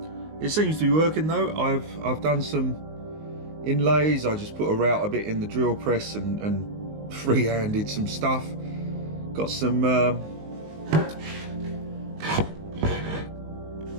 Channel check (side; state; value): left; late; 19 ms